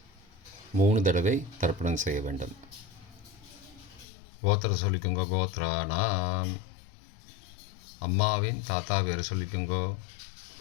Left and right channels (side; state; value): right; drops out; at 4.0 s